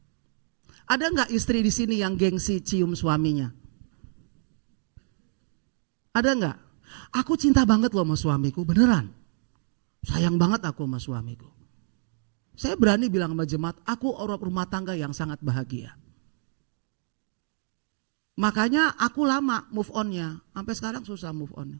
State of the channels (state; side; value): silent; left; 60 dB below the other